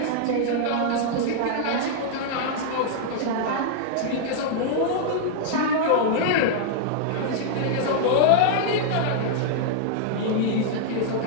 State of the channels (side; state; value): both; different; correlation -0.01